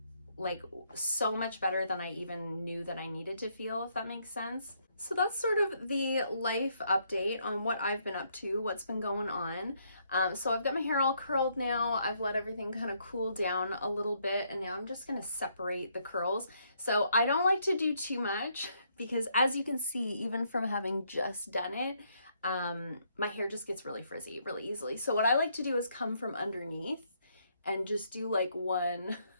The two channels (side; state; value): both; inverted; correlation -0.72